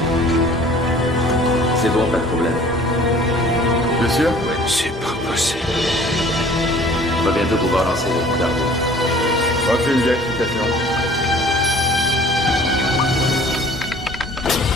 C'est bon, pas de problème. Bien sûr. C'est pas possible. On va bientôt pouvoir lancer les dardos. Aucune vérification.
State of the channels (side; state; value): both; normal; correlation 0.50